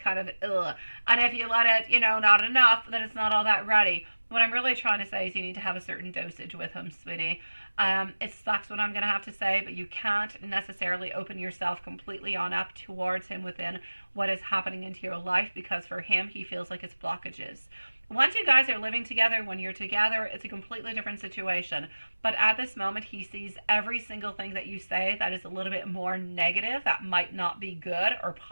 of ugh. And if you let it, not enough, then it's not all that ready. What I'm really trying to say is you need to have a certain dosage with him, sweetie. It sucks what I'm going to have to say, but you can't necessarily open yourself completely on up towards him within what is happening into your life, because for him, he feels like it's blockages. Once you guys are living together, when you're together, it's a completely different situation. But at this moment, he sees every single thing that you say that is a little bit more negative, that might not be good or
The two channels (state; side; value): inverted; both; correlation -1.00